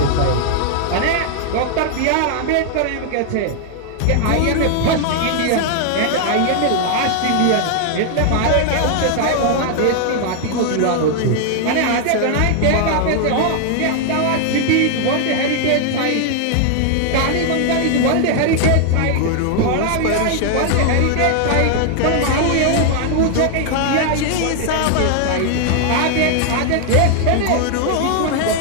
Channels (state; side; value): different; both; correlation 0.00